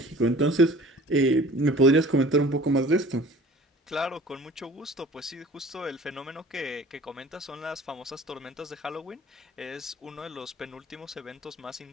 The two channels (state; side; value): normal; both; correlation 0.46